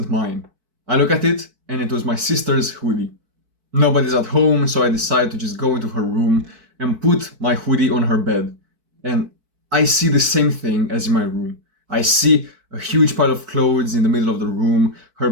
mine. I look at it, and it was my sister's hoodie. Nobody's at home, so I decide to just go into her room and put my hoodie on her bed. And I see the same thing as in my room. I see a huge pile of clothes in the middle of the room. Her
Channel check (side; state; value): left; late; 4.6 ms